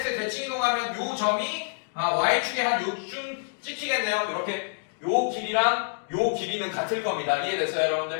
대칭 이동하면 요 점이 y축에 한 요쯤 찍히겠네요. 이렇게 요 길이랑 요 길이는 같을 겁니다. 이해됐어요,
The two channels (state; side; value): silent; right; digital silence